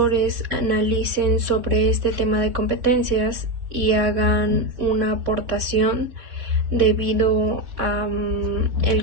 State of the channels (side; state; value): left; late; 3.6 ms